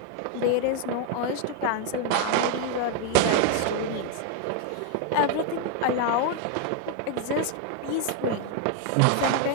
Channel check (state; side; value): different; both; correlation 0.00